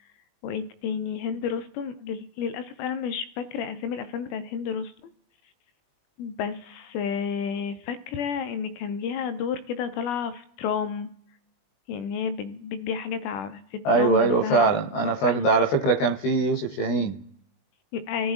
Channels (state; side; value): late; right; 20 ms